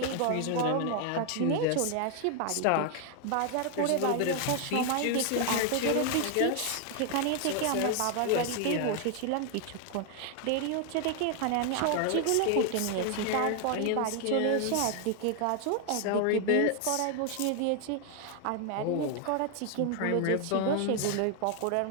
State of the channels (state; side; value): different; both; correlation 0.00